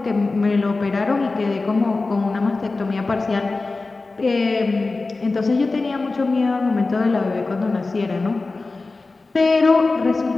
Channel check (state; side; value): quieter; right; 3.6 dB